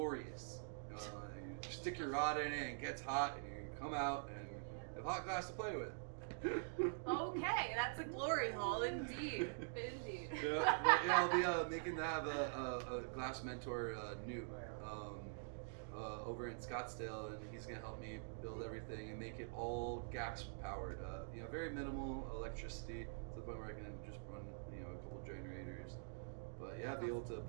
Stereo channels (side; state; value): left; silent; digital silence